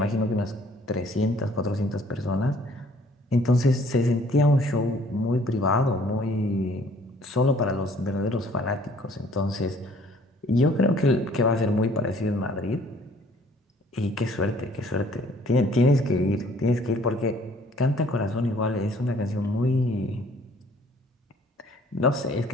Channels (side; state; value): both; normal; correlation 0.58